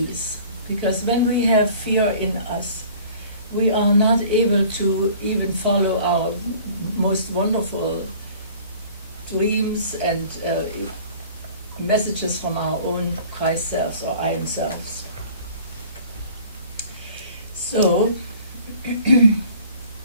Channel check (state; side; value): inverted; both; correlation -0.48